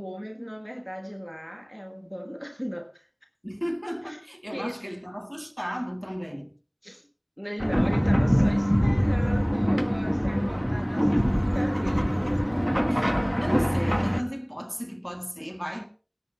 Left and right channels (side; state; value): both; identical; correlation 1.00